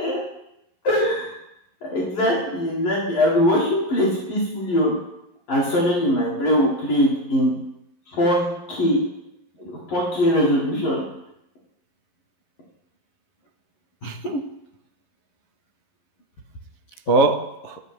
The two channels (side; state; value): right; late; 11 ms